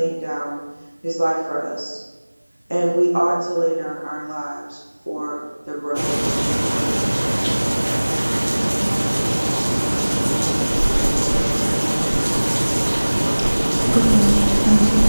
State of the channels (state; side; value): inverted; both; correlation -1.00